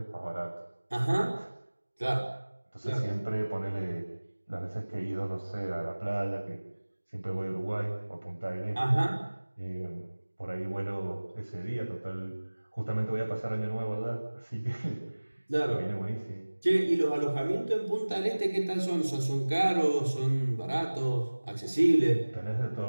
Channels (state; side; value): inverted; both; correlation -1.00